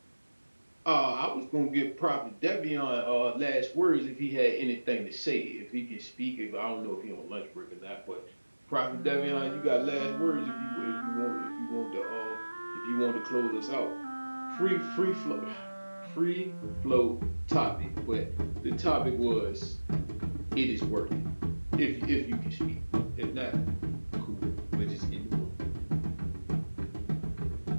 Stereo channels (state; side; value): inverted; both; correlation -1.00